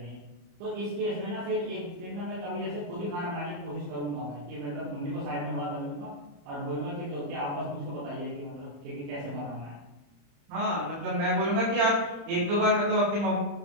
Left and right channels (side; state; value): left; late; 35 ms